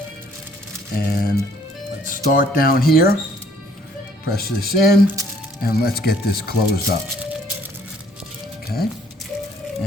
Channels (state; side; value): normal; both; correlation 0.61